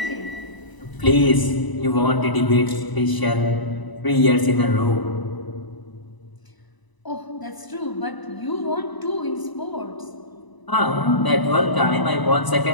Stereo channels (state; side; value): late; right; 1.0 ms